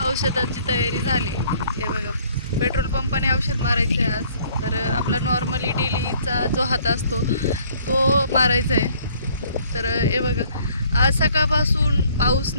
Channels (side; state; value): both; inverted; correlation -0.60